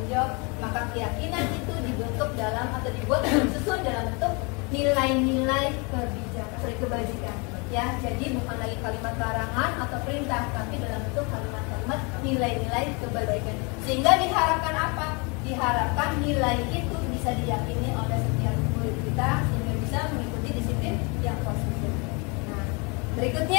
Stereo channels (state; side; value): quieter; right; 30.9 dB